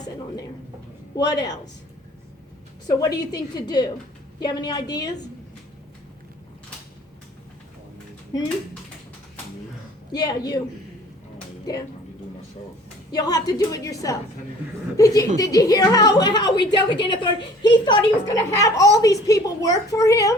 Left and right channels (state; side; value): normal; both; correlation 0.51